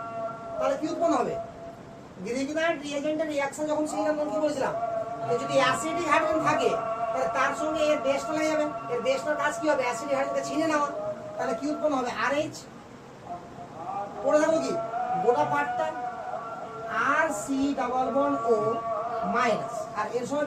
তাহলে কি উৎপন্ন হবে? গ্রিগনার্ড রিয়েজেন্টের রিঅ্যাকশন যখন শিখলাম তখন কি বলেছিলাম? যে যদি অ্যাসিডিক হাইড্রোজেন থাকে তাহলে তার সঙ্গে এর বেসটা লেগে যাবে। এর বেসটার কাজ কি হবে? অ্যাসিডিক হাইড্রোজেনকে ছিনে নেওয়া। তাহলে কি উৎপন্ন হবে? RH। পড়ে থাকবো কি গোটা পার্টটা? RC++O-, আর এর সঙ্গে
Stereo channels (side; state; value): both; identical; correlation 1.00